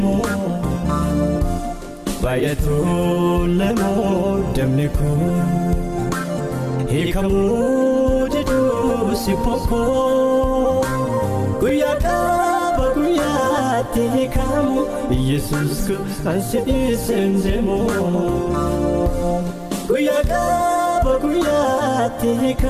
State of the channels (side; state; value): both; identical; correlation 1.00